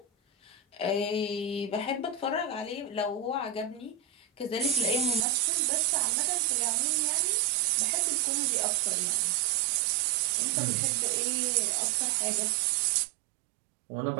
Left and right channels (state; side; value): drops out; left; at 5.2 s